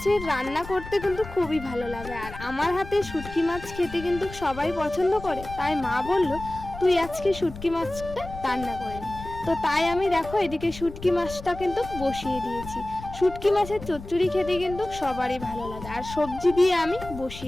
রান্না করতে কিন্তু খুবই ভালো লাগে, আর আমার হাতে শুটকি মাছ খেতে কিন্তু সবাই পছন্দ করে, তাই মা বলল তুই আজকে শুটকি মাছটা রান্না করে নি। তো তাই আমি দেখো এদিকে শুটকি মাছটা কিন্তু বসিয়ে দিয়েছি। শুটকি মাছের চচ্চড়ি খেতে কিন্তু সবারই ভালো লাগে, আর সবজি দিয়ে আমি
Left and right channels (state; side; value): noise; left; rumble, 13 dB below the sound